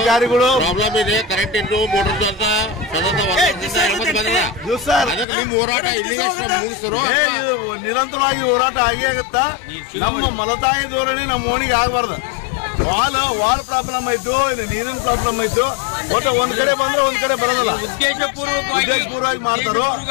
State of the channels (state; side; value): drops out; right; at 5.2 s